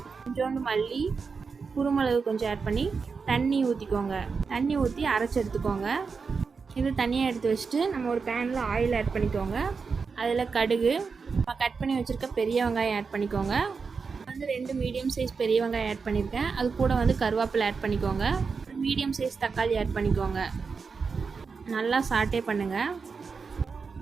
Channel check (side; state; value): left; quieter; 5.1 dB